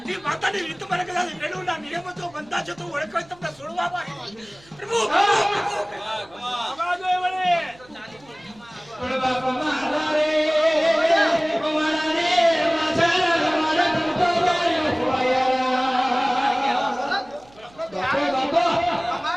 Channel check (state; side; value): noise; right; hum, 26 dB below the sound